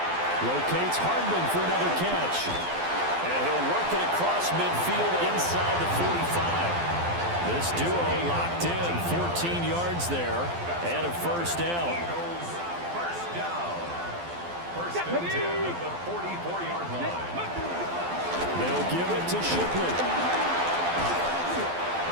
Locates Hardman for another catch. And he'll work it across midfield inside the 45. This duo locked in, 14 yards there, and a first down. First down. First and 10 at the 44-yard line. They'll give it to Shipley.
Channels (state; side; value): late; left; 12 ms